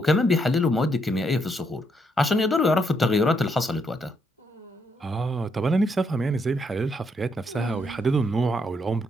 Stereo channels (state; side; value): normal; both; correlation 0.75